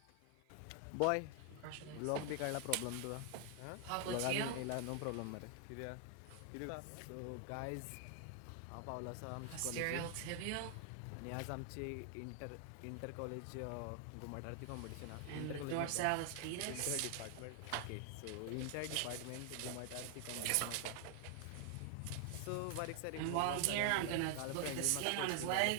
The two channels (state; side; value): different; both; correlation 0.00